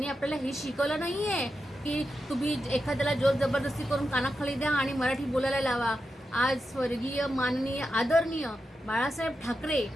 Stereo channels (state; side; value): normal; both; correlation 0.88